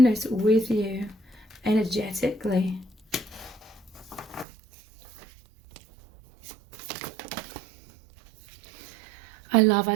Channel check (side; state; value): left; drops out; at 4.5 s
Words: with you energetically. I love